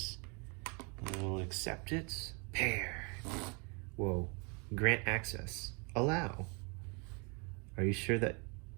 We'll accept it. Pair. Whoa. Grant access. Allow. Are you sure that...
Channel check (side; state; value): left; quieter; 33.1 dB